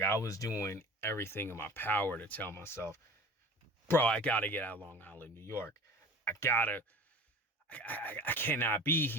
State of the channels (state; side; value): normal; both; correlation 0.39